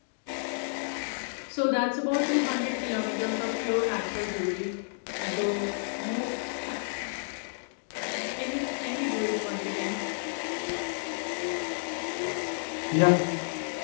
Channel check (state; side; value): silent; right; digital silence